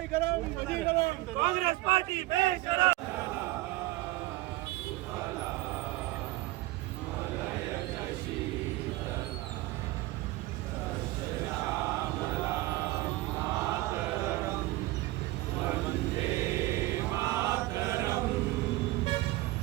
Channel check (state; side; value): quieter; left; 18.8 dB